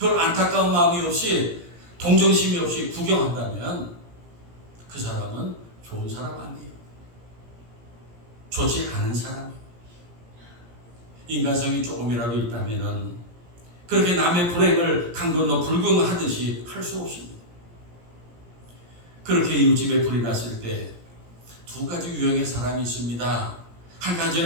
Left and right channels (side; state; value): left; late; 17 ms